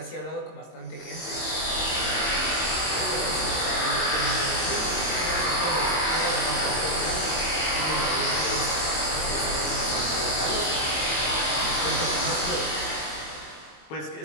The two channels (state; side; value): late; right; 22 ms